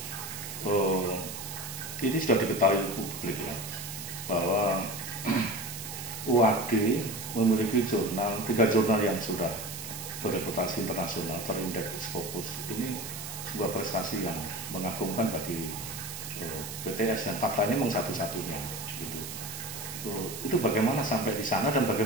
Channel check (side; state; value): right; noise; hiss, 8 dB below the sound